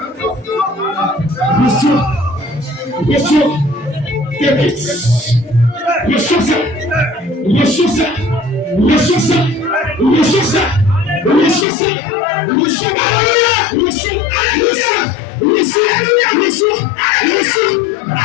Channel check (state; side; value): drops out; right; at 11.7 s